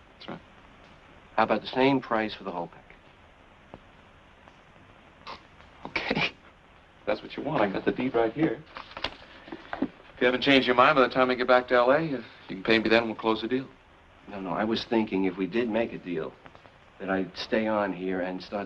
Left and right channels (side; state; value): both; identical; correlation 1.00